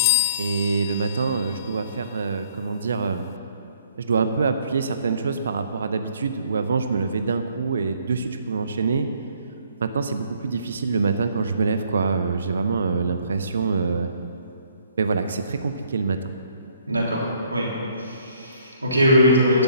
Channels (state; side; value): inverted; both; correlation -0.65